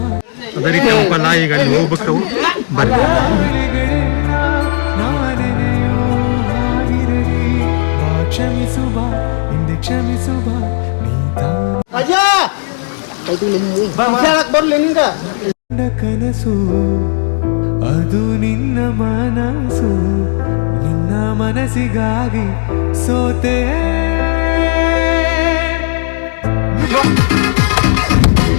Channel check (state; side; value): silent; right; digital silence